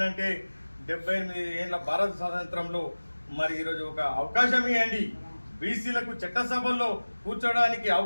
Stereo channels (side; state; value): both; inverted; correlation -1.00